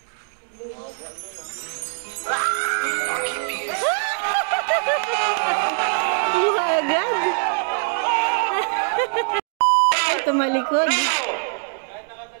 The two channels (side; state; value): left; silent; digital silence